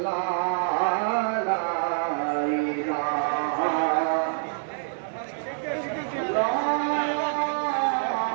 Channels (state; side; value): silent; left; digital silence